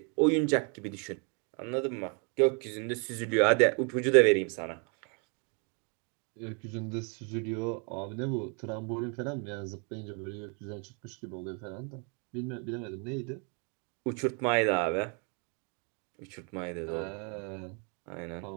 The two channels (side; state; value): left; quieter; 37.1 dB